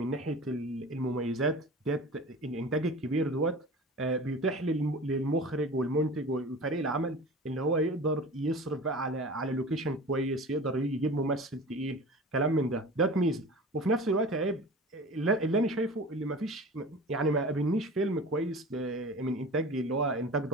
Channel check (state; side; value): normal; both; correlation 0.37